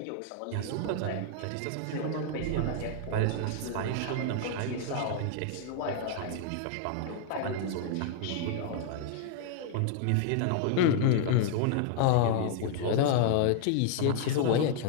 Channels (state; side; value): different; both; correlation 0.00